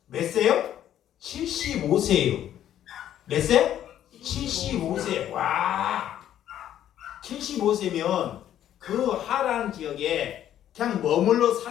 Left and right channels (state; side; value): quieter; right; 11.2 dB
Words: 몇 세요? 75세예요. 몇 세? 75세. 와, 75세면 그 하란 지역에 그냥 머물러